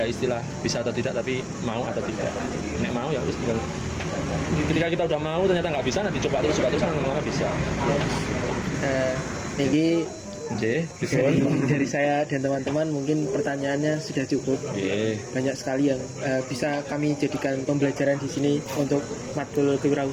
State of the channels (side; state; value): both; identical; correlation 1.00